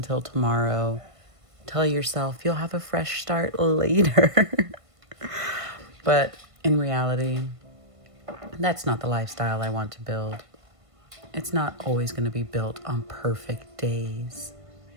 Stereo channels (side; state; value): left; late; 1.5 ms